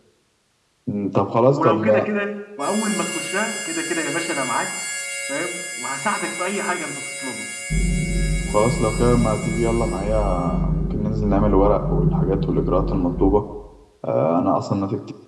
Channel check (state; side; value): identical; both; correlation 1.00